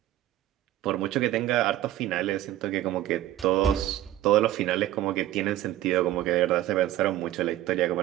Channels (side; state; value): left; quieter; 13.7 dB